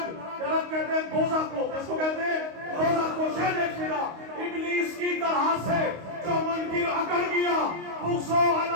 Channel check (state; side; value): late; left; 25 ms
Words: نرک کہتے ہیں دوزخ کو، اس کو کہتے ہیں دوزخ کو۔ شاید دیکھئے گا، ابلیس کی طرح سے جو منکر اکڑ گیا، بغض و